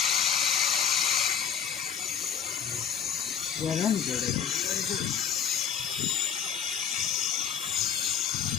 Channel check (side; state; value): right; quieter; 7.6 dB